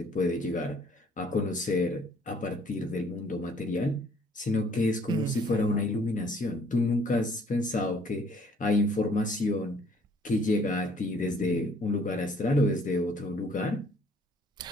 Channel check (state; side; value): normal; both; correlation 0.59